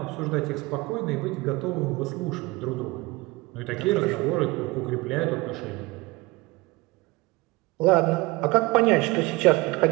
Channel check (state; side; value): quieter; left; 22.4 dB